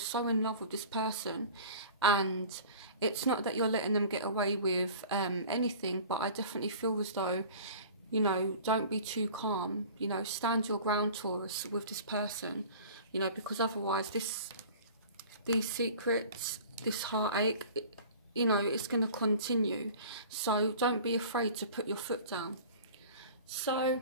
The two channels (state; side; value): inverted; both; correlation -0.42